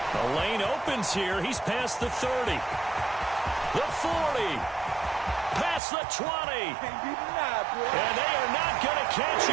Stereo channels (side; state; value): left; drops out; at 5.8 s